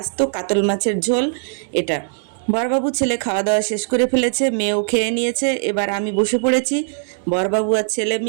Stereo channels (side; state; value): left; silent; digital silence